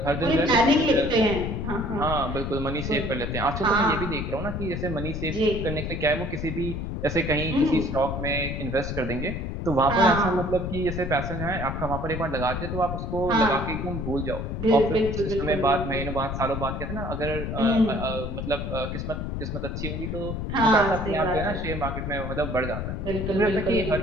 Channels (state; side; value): noise; left; rumble, 4 dB below the sound